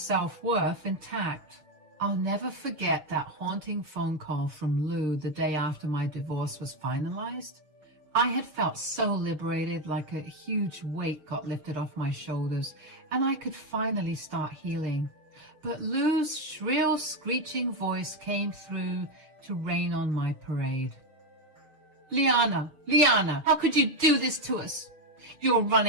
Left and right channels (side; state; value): left; late; 6.5 ms